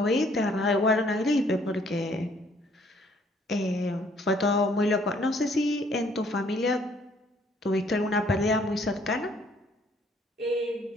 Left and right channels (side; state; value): both; normal; correlation 0.63